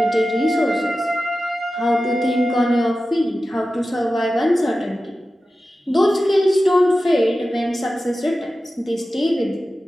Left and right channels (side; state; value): both; normal; correlation 0.94